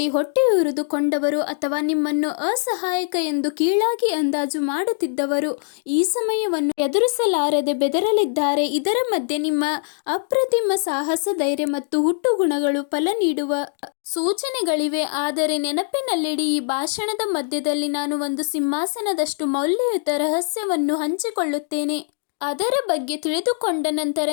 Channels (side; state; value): right; silent; 64 dB below the other